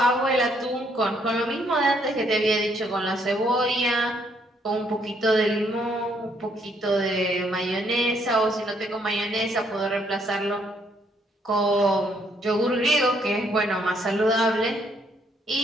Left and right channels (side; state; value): both; normal; correlation 0.70